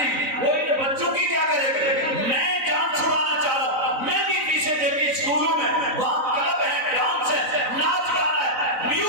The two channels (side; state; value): left; late; 3.9 ms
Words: وہ ان بچوں کی کیا کرے گا. میں جان چھڑانا چاہ رہا ہوں, میں بھی پیچھے دیکھی اسکولوں میں وہاں کلب ہے, ڈانس ہے, ناچ گانا ہے,